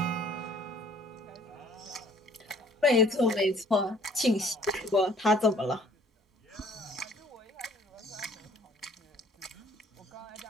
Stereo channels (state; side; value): normal; both; correlation 0.58